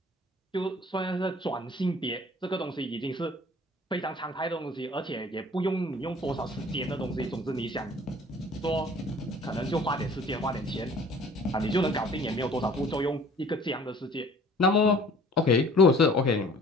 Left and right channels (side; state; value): both; normal; correlation 0.51